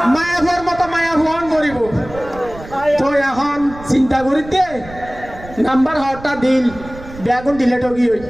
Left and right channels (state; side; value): noise; right; rumble, 16 dB below the sound